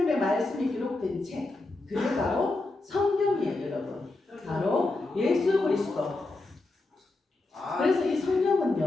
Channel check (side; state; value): right; quieter; 3.1 dB